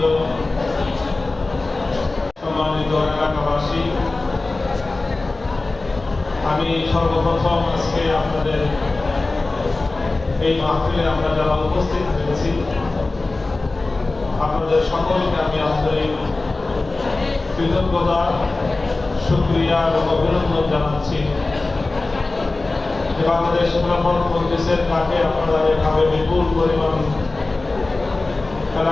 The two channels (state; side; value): quieter; right; 3.3 dB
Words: সম্মানিত এলাকাবাসী, আমি সর্বপ্রথম আজকে আপনাদের এই মাহফিলে আমরা যারা উপস্থিত হয়েছি আপনাদের সকলকে আমি আন্তরিক কৃতজ্ঞতা, শুকরিয়া এবং অভিনন্দন জানাচ্ছি। বাংলাদেশ খেলাফত মজলিসের ডাকে আপনারা এভাবে বিপুল পরিমাণ